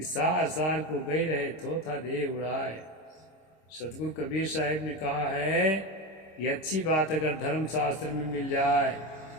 सार सार को गई रहे थोथा दे उड़ाए। सतगुरु कबीर साहिब ने कहा है, ये अच्छी बात अगर धर्मशास्त्र में मिल जाए,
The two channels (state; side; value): late; right; 26 ms